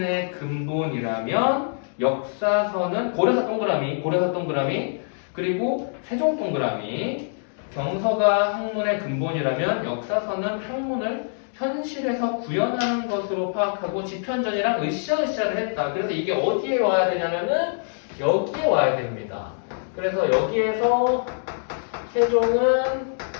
근본이라면 역사서는 고려사 동그라미 그리고 세종 동그라미. 경서가 학문의 근본이라면 역사서는 학문을 현실에서 구현하는 것으로 파악하고 지편전이랑 으쌰으쌰를 했다. 그래서 이게 어디에 와야 되냐면은 여기에 와야 됩니다. 그래서 여기에서 세종은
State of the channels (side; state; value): right; silent; digital silence